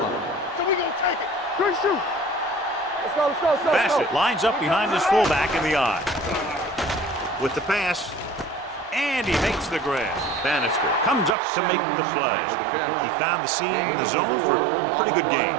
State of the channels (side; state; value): left; drops out; at 11.4 s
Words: So we gonna take it. Good shoot. Let's go, let's go, let's go. Bassett lines up behind his fullback in the eye. With the pass, and he makes the grab. Bannister comes up to make the play. He found the seam in the zone for a pretty good game.